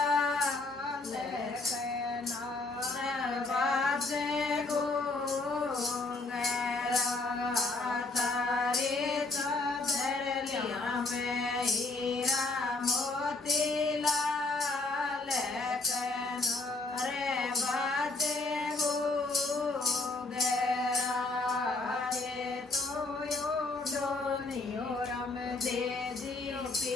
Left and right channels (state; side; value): quieter; right; 3.4 dB